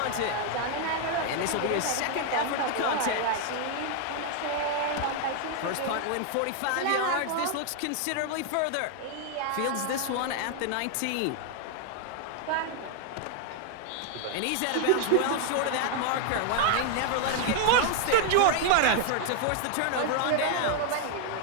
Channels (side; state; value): both; different; correlation 0.00